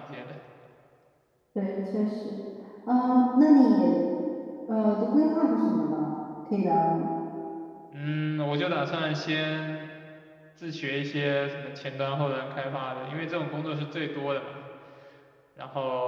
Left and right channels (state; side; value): identical; both; correlation 1.00